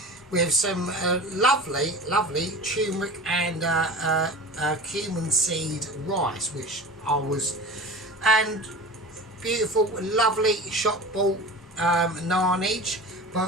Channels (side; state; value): both; normal; correlation 0.35